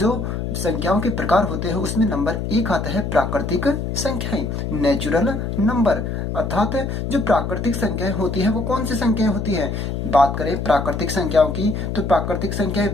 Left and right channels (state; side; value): noise; left; hum, 3 dB below the sound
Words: संख्याओं के प्रकार होते हैं उसमें नंबर एक आता है प्राकृतिक संख्याएं, नेचुरल नंबर। अर्थात जो प्राकृतिक संख्याएं होती है वो कौन सी संख्याएं होती है। बात करें प्राकृतिक संख्याओं की तो प्राकृतिक संख्याएं